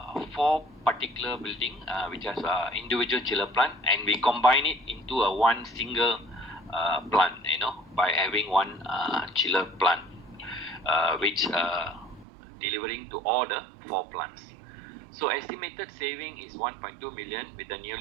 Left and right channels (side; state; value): left; drops out; at 12.2 s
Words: 4 particular building which has individual chiller plant, and we combine it into a one single plant, by having one chiller plant, which delivering to all the 4 plants. So estimated saving is 1.2 million with the